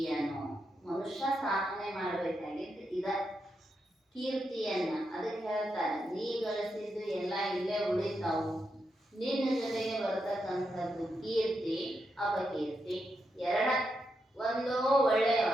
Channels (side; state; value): both; normal; correlation 0.84